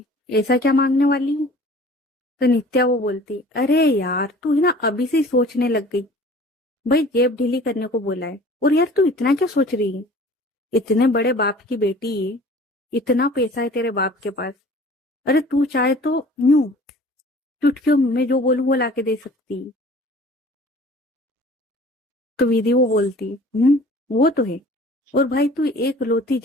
ऐसा क्या मांगने वाली है? तो नित्या वो बोलती, अरे यार तू है ना अभी से ही सोचने लग गई। भाई जेब ढीली करने को बोला है, और यार तू इतना क्या सोच रही है? इतने बड़े बाप की बेटी है, इतना पैसा है तेरे बाप के पास। अरे तू चाहे तो यूं चुटकियों में जो बोलूं वो लाके दे सकती है। तो विधि वो बोलती, वो तो है। और भाई तू एक लौती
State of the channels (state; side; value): normal; both; correlation 0.47